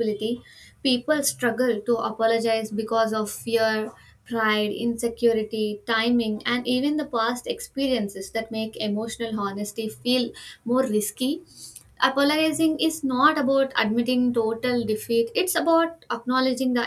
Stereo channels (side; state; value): both; identical; correlation 1.00